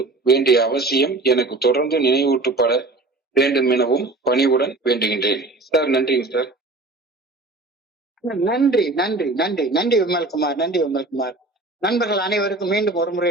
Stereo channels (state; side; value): quieter; left; 3.1 dB